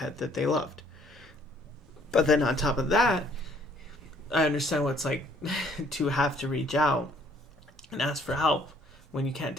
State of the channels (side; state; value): both; normal; correlation 0.61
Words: that they loved. But then on top of that, I understand what it's like to have to reach out and ask for help when you can't